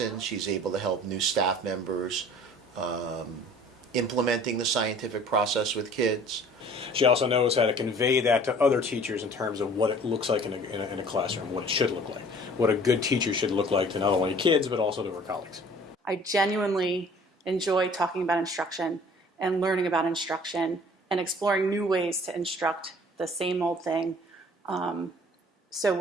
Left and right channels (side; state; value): both; normal; correlation 0.50